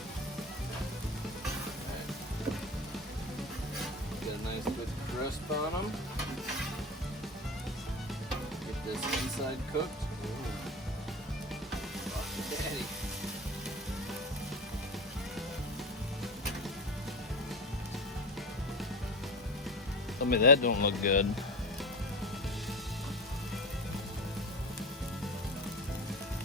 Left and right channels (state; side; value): normal; both; correlation 0.27